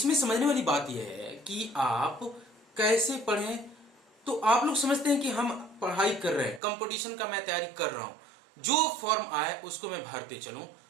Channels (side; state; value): left; drops out; at 6.6 s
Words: समझने वाली बात यह है कि आप कैसे पढ़ें। तो आप लोग समझते हैं कि हम पढ़ाई कर रहे हैं, कंपटीशन का मैं तैयारी कर रहा हूं, जो फॉर्म आए उसको मैं भरते चलूं,